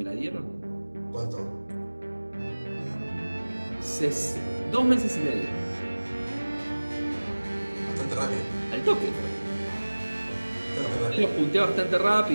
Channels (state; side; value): inverted; both; correlation -1.00